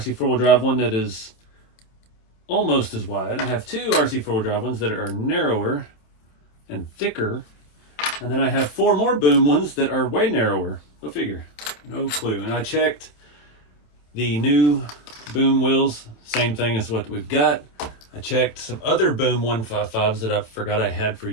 four-wheel drive one that is almost as wide. I have two RC four-wheel drive ones that are narrower and thicker. And then I have four more Boom ones that are way narrower. Go figure. No clue. And I checked the new Boom wheels, same thing as what we've got. I checked some other Boom 155s that I forgot I had for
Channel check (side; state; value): right; late; 27 ms